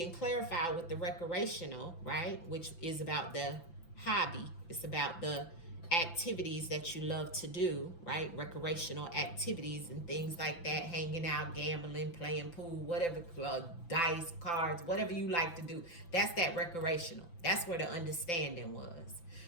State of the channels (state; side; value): late; right; 5.9 ms